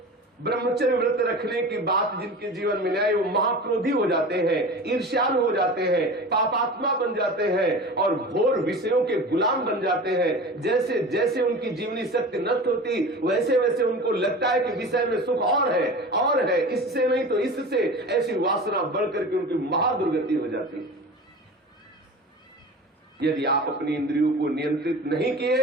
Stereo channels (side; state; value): both; normal; correlation 0.34